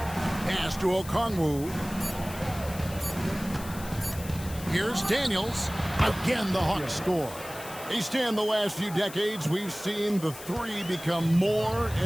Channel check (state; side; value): noise; left; hiss, 14 dB below the sound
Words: Pass to Okongwu. Here's Daniels. Again, the Hawks score. They stand the last few decades, we've seen the 3 become more